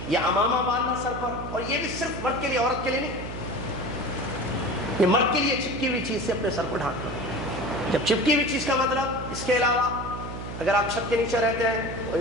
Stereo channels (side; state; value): right; noise; hum, 8 dB below the sound